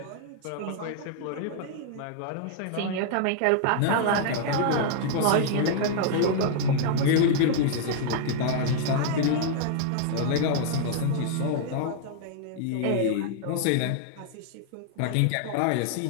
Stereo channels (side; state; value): both; different; correlation -0.01